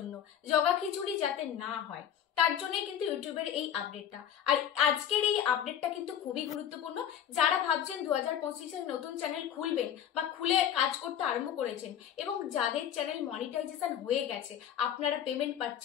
জগাখিচুড়ি যাতে না হয় তার জন্য কিন্তু ইউটিউবের এই আপডেটটা। আর আজকের এই আপডেটটা কিন্তু খুবই গুরুত্বপূর্ণ। যারা ভাবছেন 2025-এ নতুন চ্যানেল খুলবেন বা খুলে কাজ করতে আরম্ভ করেছেন এবং যাদের চ্যানেল মনিটাইজেশন হয়ে গেছে, আপনারা পেমেন্ট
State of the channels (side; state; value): right; quieter; 9.6 dB